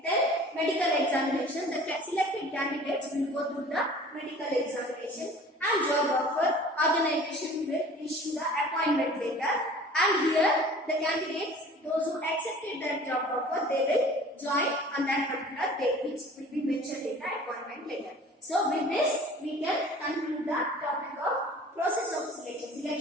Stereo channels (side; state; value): both; normal; correlation 0.46